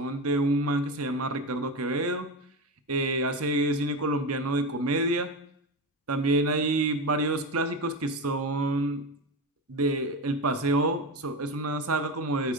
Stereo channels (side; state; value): both; normal; correlation 0.20